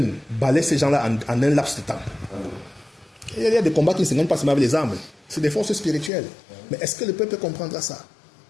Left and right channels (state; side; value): drops out; right; at 6.1 s